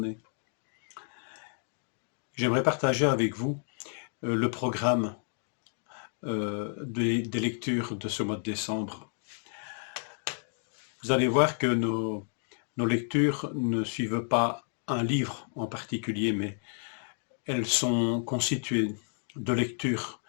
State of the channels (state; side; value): silent; right; 56 dB below the other